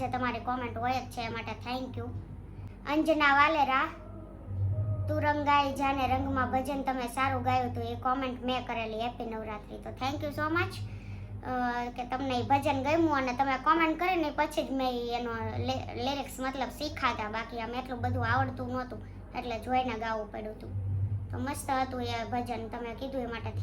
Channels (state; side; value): identical; both; correlation 1.00